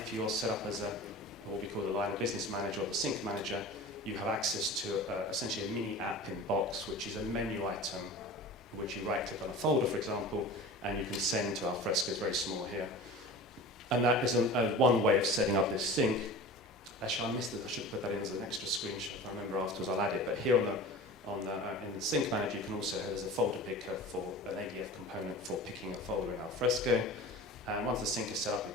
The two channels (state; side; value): normal; both; correlation 0.36